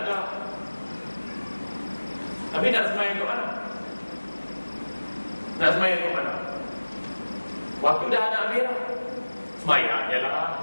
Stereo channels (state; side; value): inverted; both; correlation -1.00